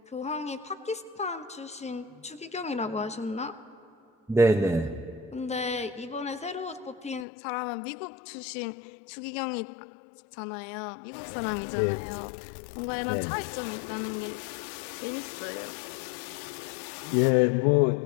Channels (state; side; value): drops out; right; at 7.2 s